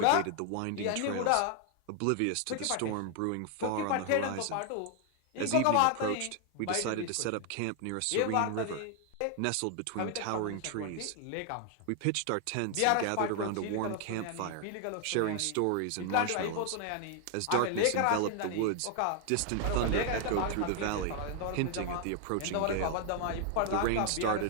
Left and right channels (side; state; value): both; different; correlation 0.00